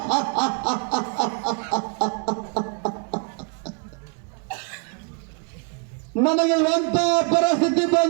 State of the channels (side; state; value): left; quieter; 37.5 dB